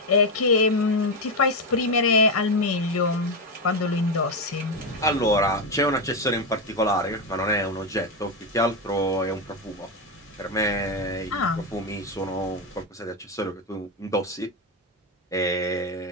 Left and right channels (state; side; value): normal; both; correlation 0.09